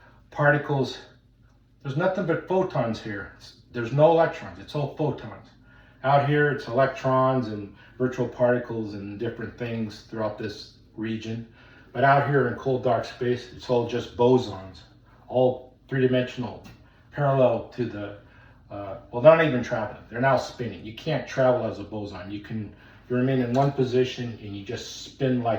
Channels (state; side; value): identical; both; correlation 1.00